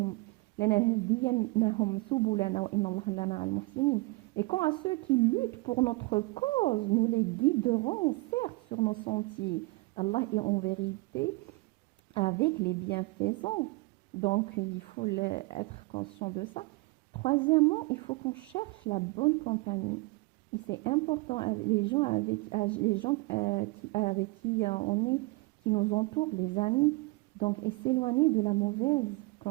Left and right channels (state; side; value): quieter; left; 24.7 dB